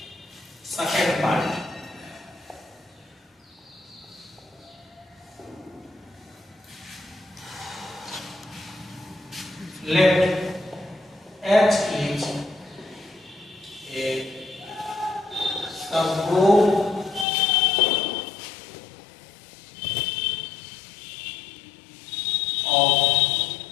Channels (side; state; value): right; drops out; at 17.2 s